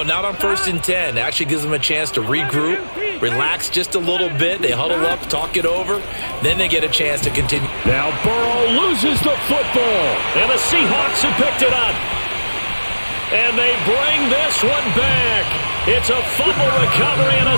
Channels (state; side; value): inverted; both; correlation -1.00